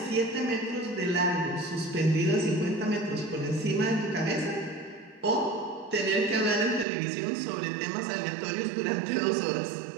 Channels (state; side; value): drops out; left; at 6.9 s